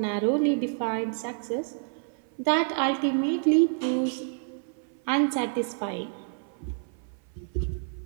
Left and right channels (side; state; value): left; silent; 56 dB below the other